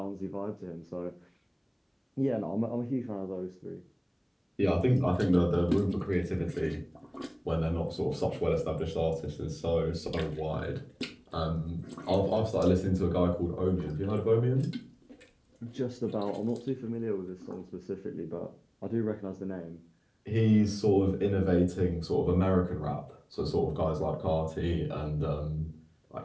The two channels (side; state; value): both; identical; correlation 1.00